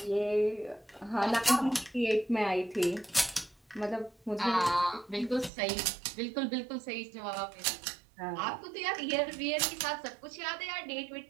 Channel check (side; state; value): left; drops out; at 5.5 s